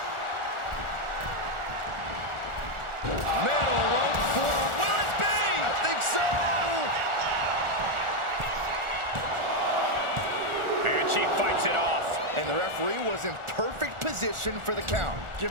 Middle rope forearm. Will it be? I think so. And she fights it off. And the referee was in perfect position for the count. Give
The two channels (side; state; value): left; late; 1.4 ms